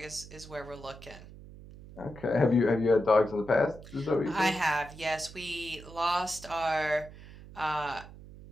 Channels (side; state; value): right; noise; hum, 17 dB below the sound